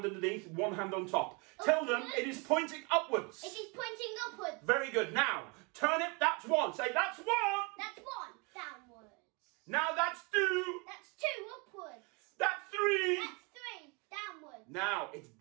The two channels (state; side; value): quieter; left; 29.9 dB